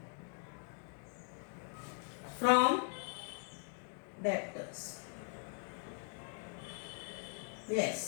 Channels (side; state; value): right; silent; 51 dB below the other